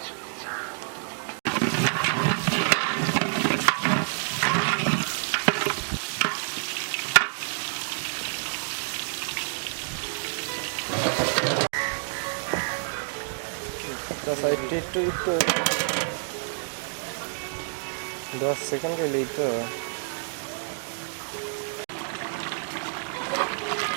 10 সেকেন্ড গেলেই তো।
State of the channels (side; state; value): left; silent; digital silence